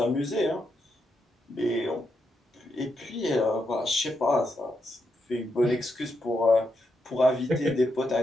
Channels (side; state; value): both; normal; correlation 0.82